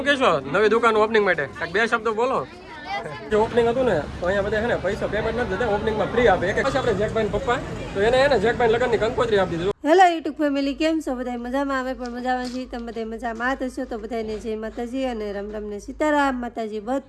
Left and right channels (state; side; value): identical; both; correlation 1.00